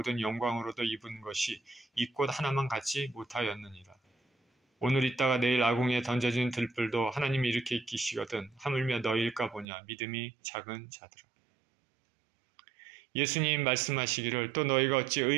영광으로도 입은 것이 이 꽃 하나만 갖지 못하였느니라. 오늘 있다가 내일 아궁이에 던져진 들불도 하나님이 이렇게 익히시거든 하물며 너희일까 보냐. 믿음이 작은 자들아. 예수님 말씀하시기를 또 너희가 어찌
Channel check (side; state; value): left; drops out; at 9.7 s